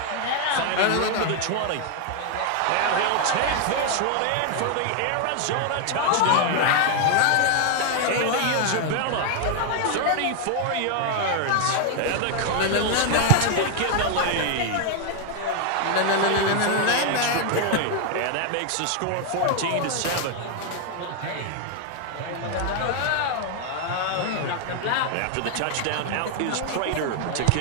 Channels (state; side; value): different; both; correlation 0.00